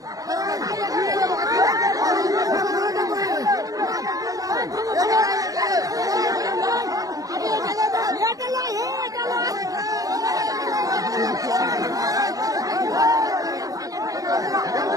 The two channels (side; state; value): left; late; 0.17 ms